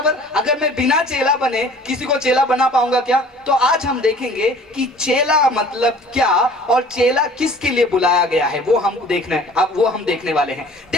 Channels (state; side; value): normal; both; correlation 0.49